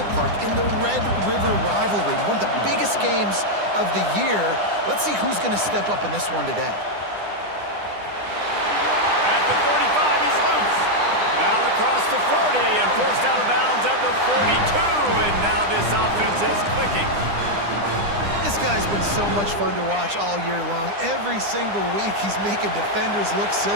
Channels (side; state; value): left; late; 9.9 ms